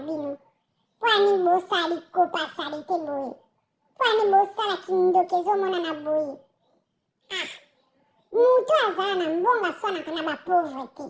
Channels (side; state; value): both; identical; correlation 1.00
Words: po ani bosali kopa sali te boye po ani bosala kindoki ezomona na boye mutu azala na mbongo aswanaka na bapauvre te